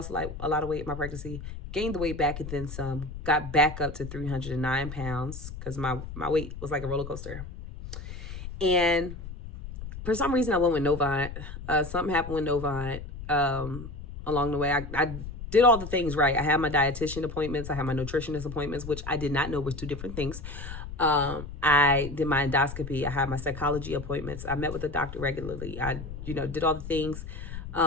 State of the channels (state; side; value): noise; left; rumble, 10 dB below the sound